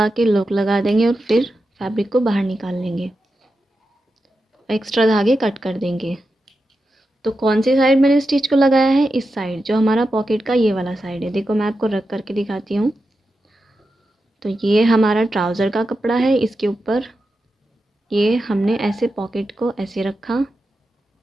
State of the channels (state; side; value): normal; both; correlation 0.89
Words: के लॉक लगा देंगे और फिर फैब्रिक को बाहर निकाल लेंगे, एक्स्ट्रा धागे कट कर देंगे। तो कौन सी साइड मैंने स्टिच को लगाया है, इस साइड, जो हमारा पॉकेट का ये वाला साइड है। देखो मैं आपको रख करके दिखाती हूँ। तो ये हमारा ट्राउज़र का कपड़ा है, इसके ऊपर ये हमने ऐसे पॉकेट को ऐसे रखा